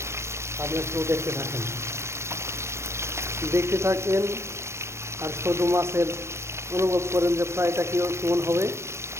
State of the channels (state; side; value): late; left; 0.13 ms